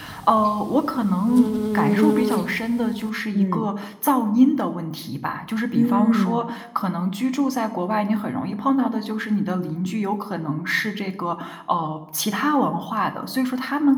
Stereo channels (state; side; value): identical; both; correlation 1.00